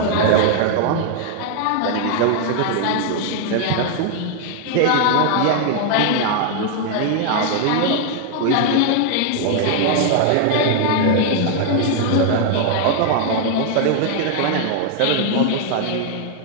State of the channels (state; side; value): different; both; correlation 0.00